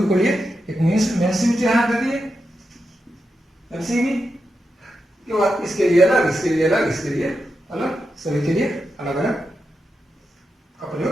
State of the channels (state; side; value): normal; both; correlation 0.88